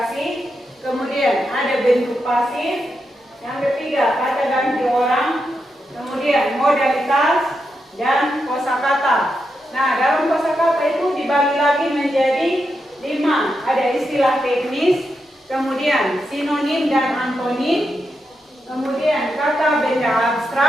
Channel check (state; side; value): normal; both; correlation 0.85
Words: kemudian ada bentuk pasif, yang ketiga kata ganti orang, kemudian modalitas, dan kosakata. Nah, dalam kosakata itu dibagi lagi menjadi 5, ada istilah teknis, kemudian sinonim dan antonim, kemudian kata benda